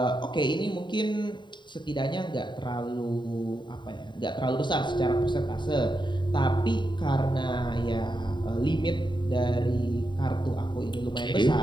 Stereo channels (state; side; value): late; right; 0.22 ms